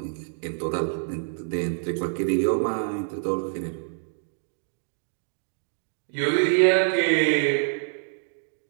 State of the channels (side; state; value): left; silent; digital silence